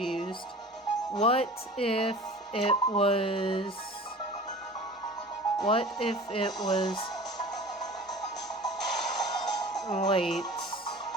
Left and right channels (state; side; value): normal; both; correlation 0.40